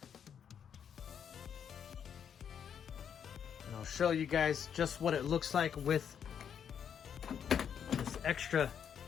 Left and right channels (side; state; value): right; quieter; 8.1 dB